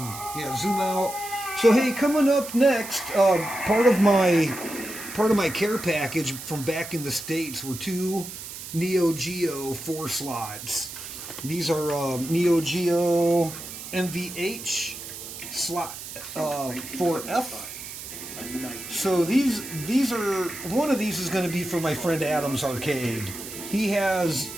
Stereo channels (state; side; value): noise; right; hiss, 11 dB below the sound